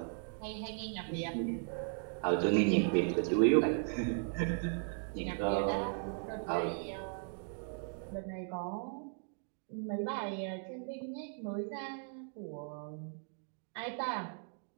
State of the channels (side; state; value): left; silent; 53 dB below the other